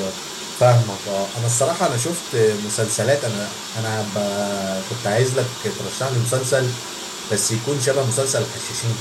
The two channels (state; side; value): identical; both; correlation 1.00